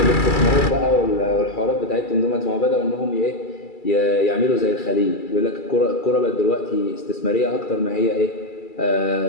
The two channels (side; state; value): right; late; 2.3 ms